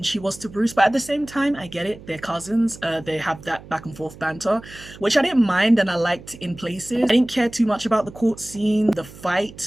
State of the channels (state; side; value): noise; right; hum, 18 dB below the sound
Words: she was to Bruce, but at the same time, I get it. They're cousins. They have that back and forth banter, which I didn't mind and I liked in places. I didn't care too much about the court scene. The